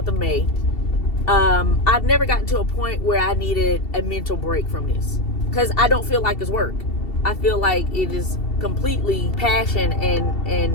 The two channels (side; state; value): right; late; 2.7 ms